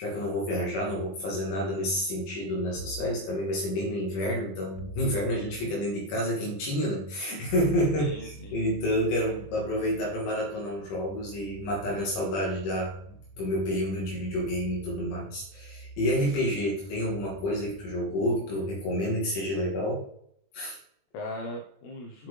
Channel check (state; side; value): late; right; 20 ms